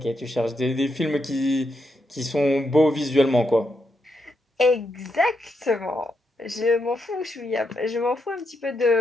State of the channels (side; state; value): both; normal; correlation 0.82